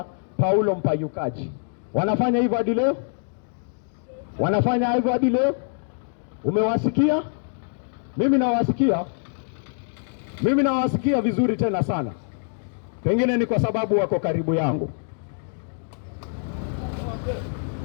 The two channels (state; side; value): silent; right; digital silence